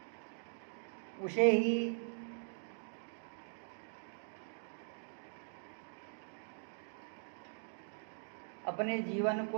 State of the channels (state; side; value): silent; left; digital silence